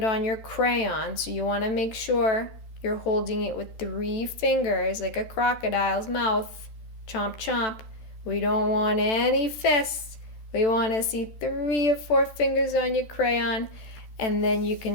on your crayon. So you want to make sure you're holding it with 3 fingers like a crocodile's mouth. Chomp chomp. We don't want any fists. We want to see 3 or 4 fingers on your crayon, and then you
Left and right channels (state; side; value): late; right; 14 ms